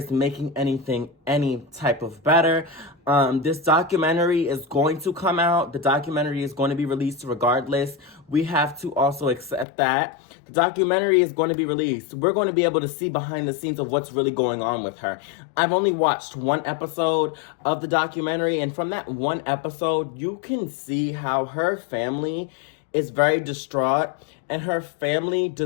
making anything any type of better. This documentary is going to come out. The documentary is going to be released regardless. We have to also accept that. The documentary is going to be released. We're going to be able to see behind the scenes of what's really going on with her. I've only watched one episode of the documentary, and from that one episode, you can see how her family is very distraught, and her family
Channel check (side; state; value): right; drops out; at 9.7 s